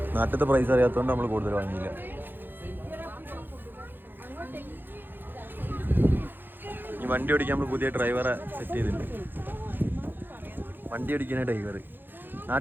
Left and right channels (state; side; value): late; left; 0.096 ms